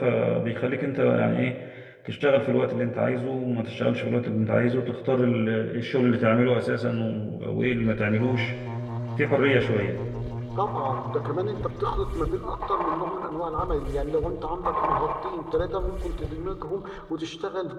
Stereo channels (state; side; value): identical; both; correlation 1.00